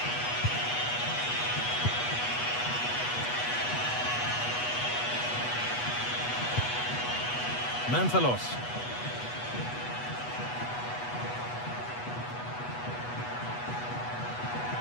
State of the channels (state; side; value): late; right; 8.2 ms